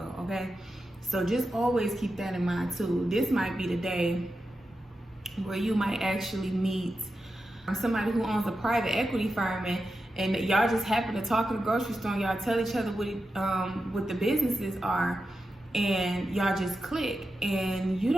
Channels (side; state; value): both; normal; correlation 0.90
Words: okay? So just always keep that in mind too. This might be the day where you might actually meet somebody who owns a private equity firm, and y'all just happen to talk in the grocery store, and y'all tell each other what the businesses are, and y'all just click, and you